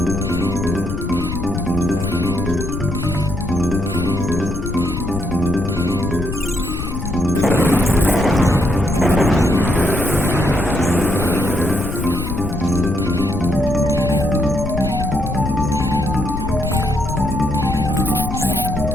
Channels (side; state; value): left; noise; rumble, 5 dB below the sound